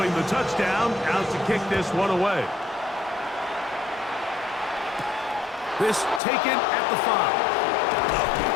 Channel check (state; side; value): drops out; right; at 6.2 s